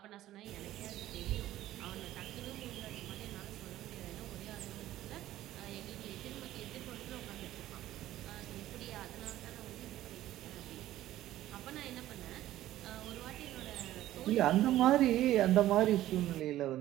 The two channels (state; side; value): quieter; left; 14.1 dB